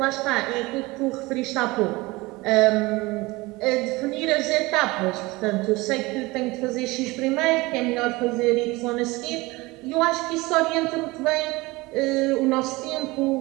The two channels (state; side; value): quieter; left; 22.2 dB